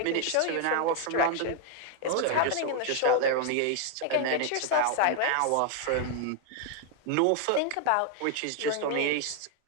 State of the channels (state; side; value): different; both; correlation 0.00